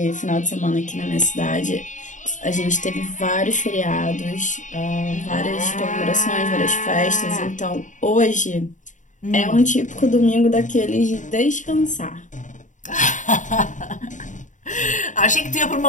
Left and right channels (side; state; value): right; late; 0.36 ms